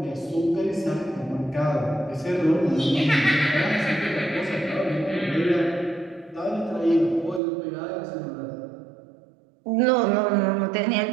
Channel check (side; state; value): left; drops out; at 7.4 s